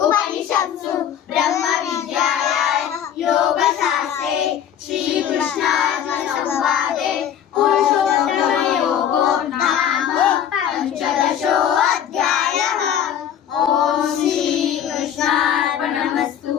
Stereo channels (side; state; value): right; quieter; 9.4 dB